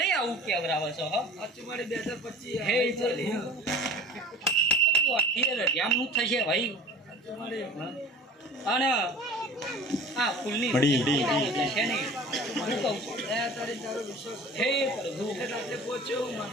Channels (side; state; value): both; normal; correlation 0.41